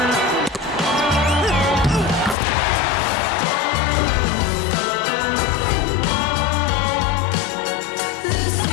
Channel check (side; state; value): right; drops out; at 2.4 s